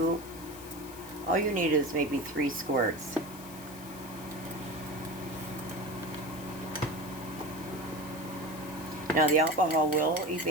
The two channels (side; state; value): left; noise; hiss, 16 dB below the sound